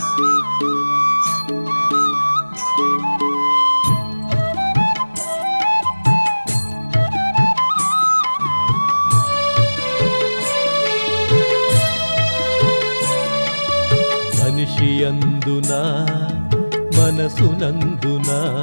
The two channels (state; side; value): inverted; both; correlation -1.00